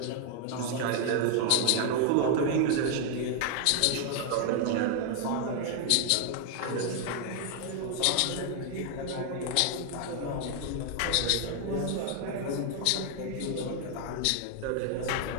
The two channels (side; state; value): both; different; correlation 0.00